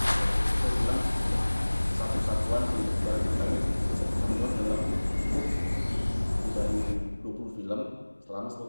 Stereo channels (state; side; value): inverted; both; correlation -1.00